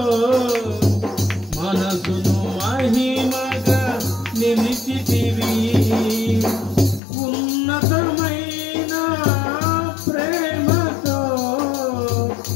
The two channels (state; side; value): drops out; right; at 7.0 s